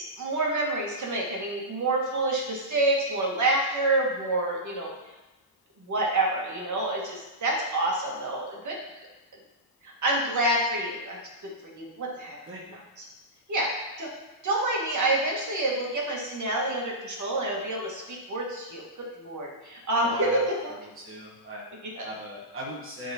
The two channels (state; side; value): normal; both; correlation -0.14